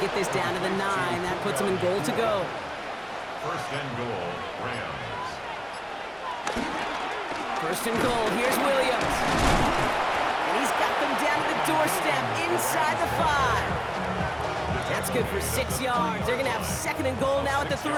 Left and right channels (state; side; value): identical; both; correlation 1.00